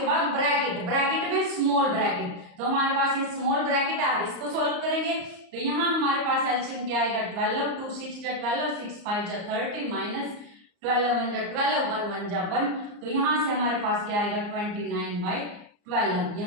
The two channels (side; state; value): left; late; 34 ms